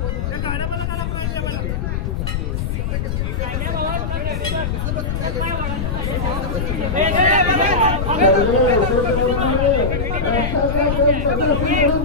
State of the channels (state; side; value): noise; left; rumble, 1 dB below the sound